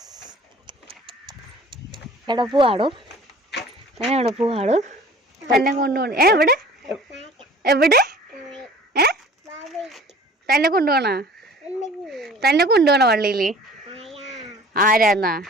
എവിടെ പോവാടോ? എവിടെ പോവാടോ? തന്നെ കൊണ്ടുപോകണം. എവിടെ എവിടെ തന്നെ കൊണ്ടുപോകണ? തന്നെ കൊണ്ടുപോകണ പള്ളിയിൽ? ആരാന്നാ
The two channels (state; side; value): normal; both; correlation 0.47